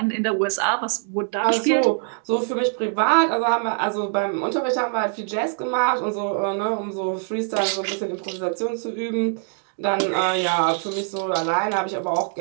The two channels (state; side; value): silent; left; 61 dB below the other